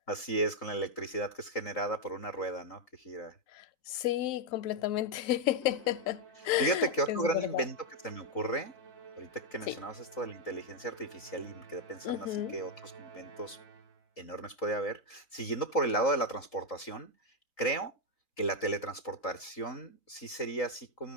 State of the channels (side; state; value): right; late; 3.9 ms